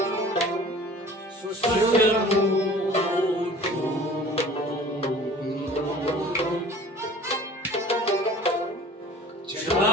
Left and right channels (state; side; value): normal; both; correlation 0.45